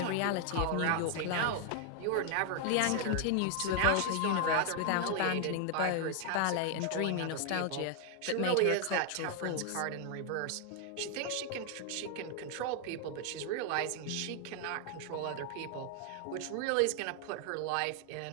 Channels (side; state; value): both; different; correlation 0.00